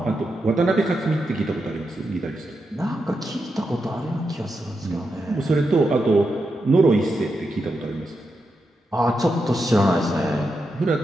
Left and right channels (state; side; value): normal; both; correlation 0.86